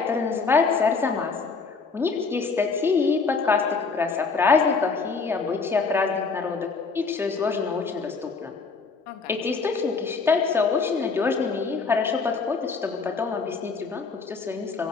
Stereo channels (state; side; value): quieter; right; 4.7 dB